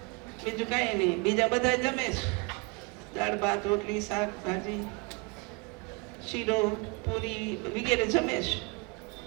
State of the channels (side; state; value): left; quieter; 29.5 dB